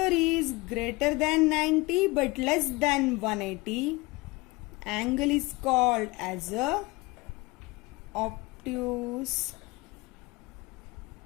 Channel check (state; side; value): quieter; right; 23.5 dB